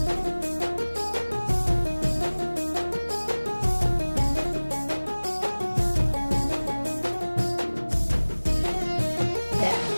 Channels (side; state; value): both; inverted; correlation -1.00